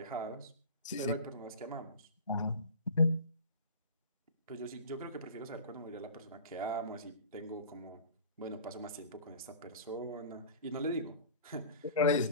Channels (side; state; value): both; inverted; correlation -0.38